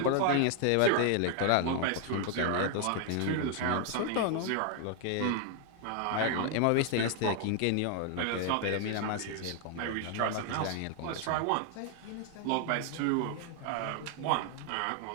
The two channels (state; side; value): different; both; correlation 0.00